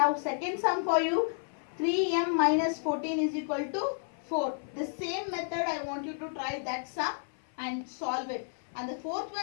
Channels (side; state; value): right; silent; 57 dB below the other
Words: second sum for you. 3m minus 14 is equal to 4. The same method I want you to try that sum and solve it. And the fourth